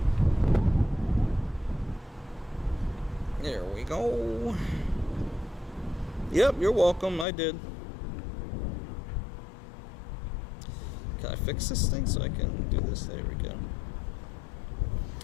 There we go. Yep, you're welcome. I did. Can I fix this thing so I can do this? There we go.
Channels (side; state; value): right; drops out; at 7.2 s